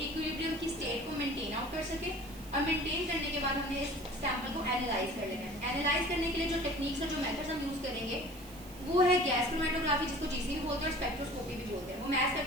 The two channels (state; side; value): noise; right; hiss, 19 dB below the sound